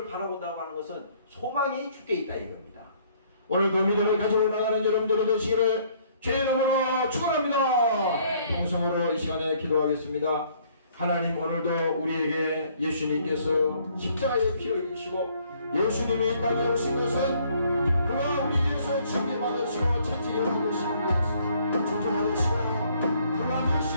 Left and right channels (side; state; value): both; inverted; correlation -0.63